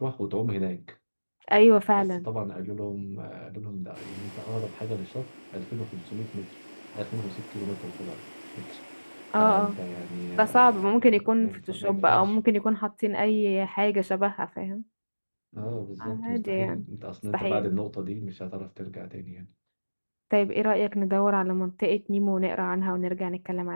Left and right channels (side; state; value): both; inverted; correlation -1.00